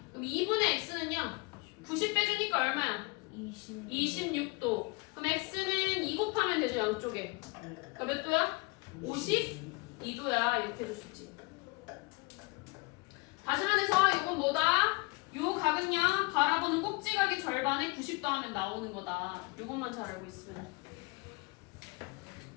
그럼 2분의 x는요, 90 빼주니까 얼마야? 26도. 그럼 x는 2 곱하면 되죠, 양쪽에. 그러니까 몇 도야? 52도야. 이렇게 해줄 수 있지. 다시 말해서 이건 뭐다? 요 각은요 바라보는 꼭지각의 절반에 90도 하면 나오는 거다. 요것만 잘 알고 있으면.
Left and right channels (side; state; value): right; quieter; 26.9 dB